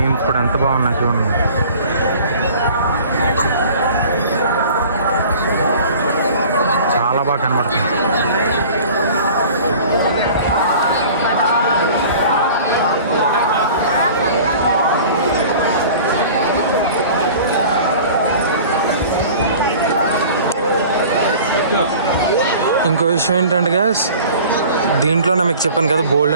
ఇప్పుడు ఎంత బాగున్నా చూడండి. చాలా బాగా కనబడుతుంది. ఇంకో విషయం ఏంటంటే గ్యాస్, దీంట్లోనే మీకు చెప్పాను కదా బోల్డ్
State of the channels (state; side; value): inverted; both; correlation -0.44